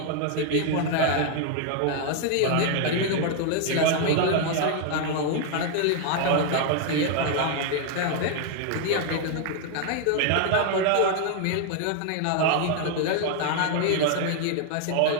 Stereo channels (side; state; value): both; different; correlation 0.00